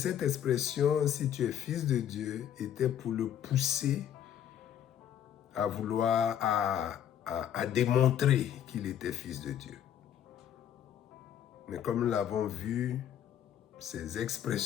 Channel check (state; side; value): quieter; right; 9.9 dB